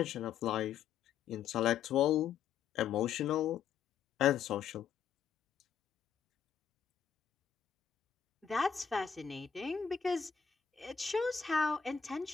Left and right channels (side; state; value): right; quieter; 7.5 dB